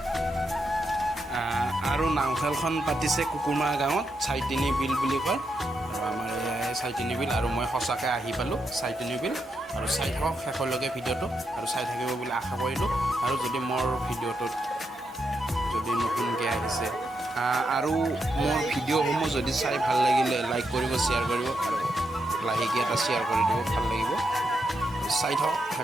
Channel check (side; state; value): both; normal; correlation 0.83